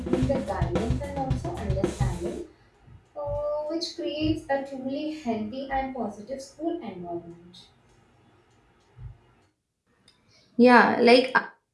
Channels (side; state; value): both; identical; correlation 1.00